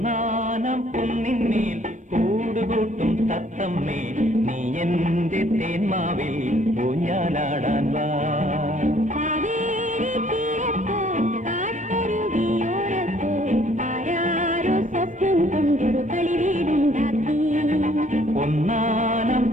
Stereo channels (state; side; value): normal; both; correlation 0.61